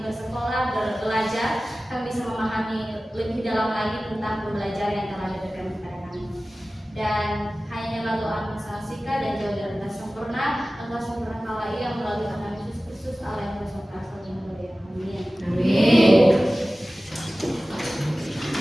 bersekolah, belajar, kami bisa memahami lebih dalam lagi tentang pembelajaran yang telah diberikan kepada kami. Dan hanya doa Sika dan jauh dari kata sempurna, engkau sempurna kala ia melalui Tuhan Yesus Kristus Allah yang berkuasa dengan berlian. Amin. Amin.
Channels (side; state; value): both; normal; correlation 0.96